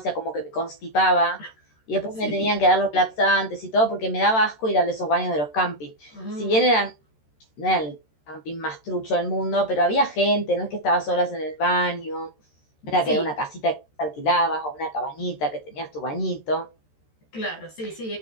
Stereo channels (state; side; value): late; right; 13 ms